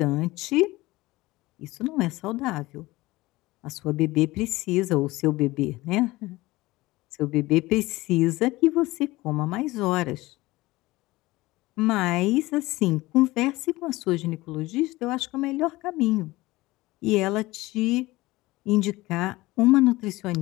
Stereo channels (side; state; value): right; quieter; 19.6 dB